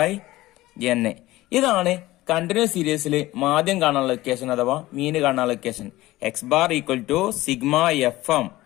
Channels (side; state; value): right; quieter; 17.6 dB